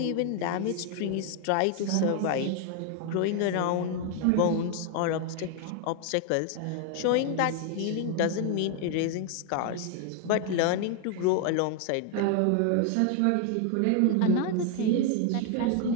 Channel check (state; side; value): different; both; correlation 0.00